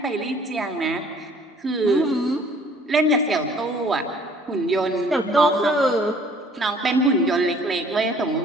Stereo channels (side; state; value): both; normal; correlation 0.55